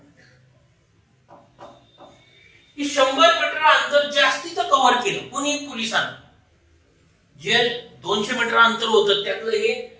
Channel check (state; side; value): identical; both; correlation 1.00